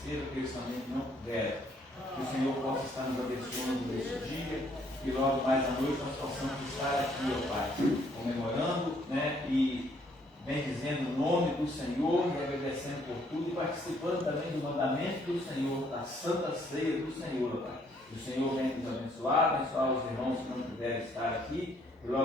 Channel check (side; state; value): both; normal; correlation 0.66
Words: que eles também não puderam. Que o Senhor possa estar nos abençoando nesse dia, que logo mais à noite nós possamos estar aqui, ó Pai, comemorando, né, e bendizendo o nome do Senhor e agradecendo por tudo e participando também do mandamento do Senhor, da santa ceia do Senhor, ó Pai. Que o Senhor venha nos abençoar os irmãos que não puderem estar aqui, e